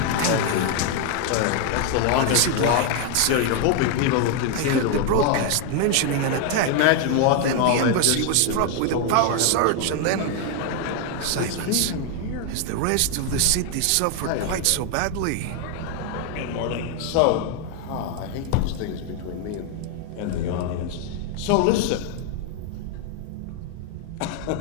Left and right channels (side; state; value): both; different; correlation 0.00